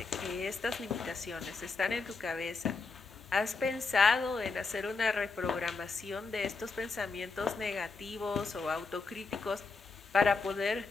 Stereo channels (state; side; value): quieter; right; 4.2 dB